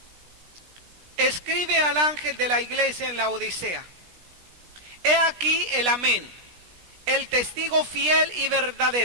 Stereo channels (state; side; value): late; left; 17 ms